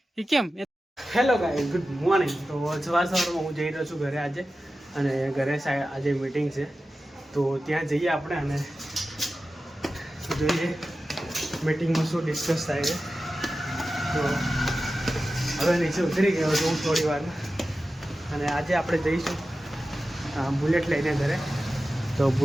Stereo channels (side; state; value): both; normal; correlation 0.94